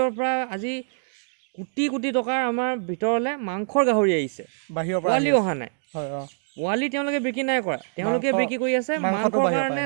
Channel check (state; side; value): silent; left; digital silence